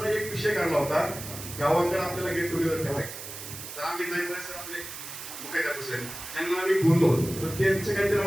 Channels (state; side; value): noise; right; hiss, 10 dB below the sound